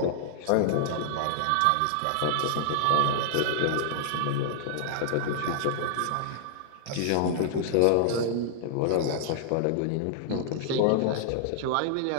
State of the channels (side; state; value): both; different; correlation -0.01